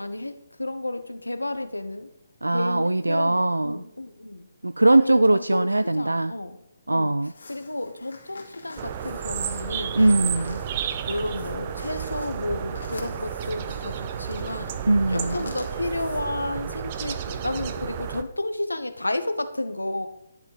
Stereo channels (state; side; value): inverted; both; correlation -0.93